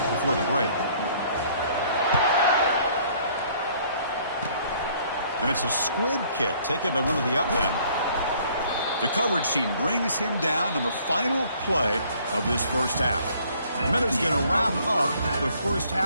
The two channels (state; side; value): inverted; both; correlation -0.60